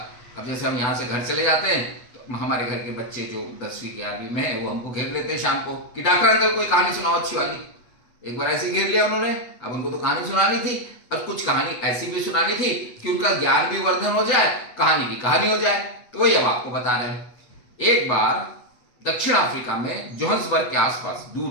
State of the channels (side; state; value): right; late; 8.2 ms